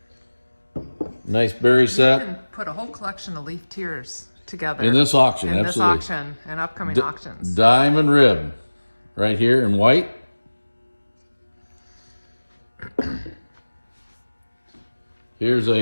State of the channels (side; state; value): both; inverted; correlation -1.00